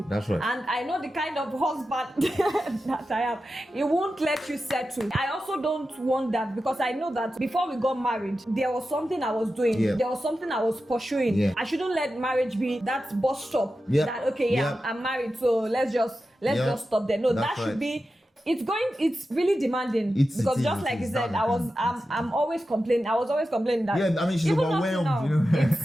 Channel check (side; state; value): both; normal; correlation 0.92